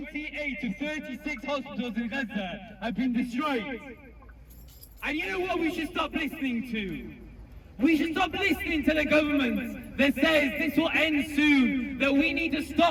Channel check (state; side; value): identical; both; correlation 1.00